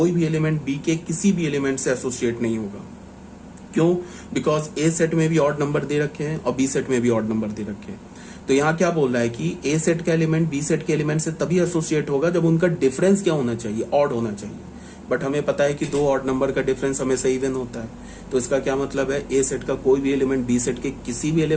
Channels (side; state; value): both; identical; correlation 1.00